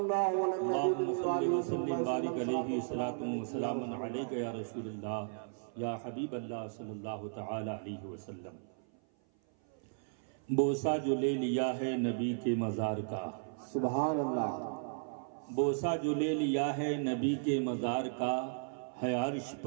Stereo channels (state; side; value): silent; left; 54 dB below the other